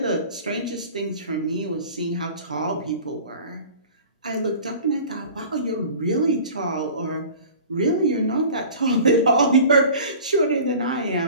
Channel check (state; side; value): inverted; both; correlation -0.42